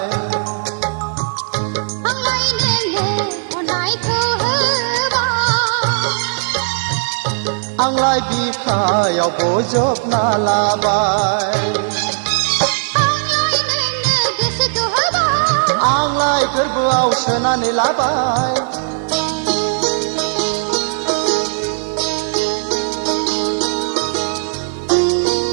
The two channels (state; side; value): silent; left; 63 dB below the other